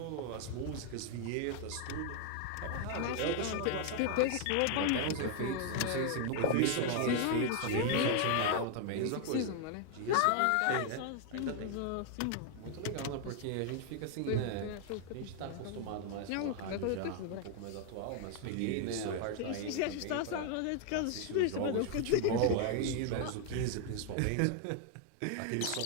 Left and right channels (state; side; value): different; both; correlation 0.00